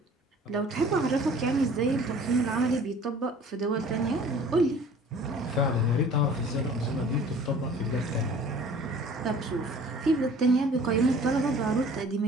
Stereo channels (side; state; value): both; normal; correlation 0.49